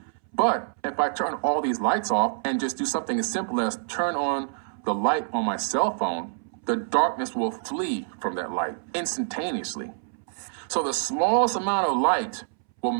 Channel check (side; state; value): left; silent; 61 dB below the other